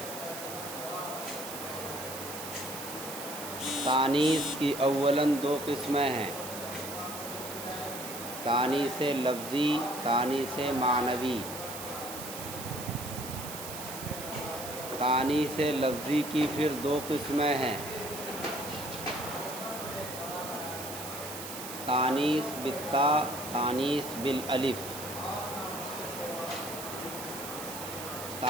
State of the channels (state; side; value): noise; right; hiss, 9 dB below the sound